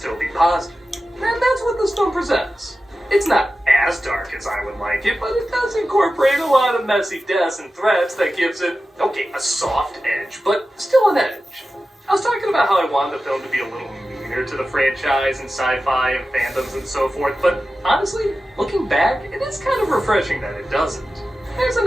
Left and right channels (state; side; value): normal; both; correlation 0.93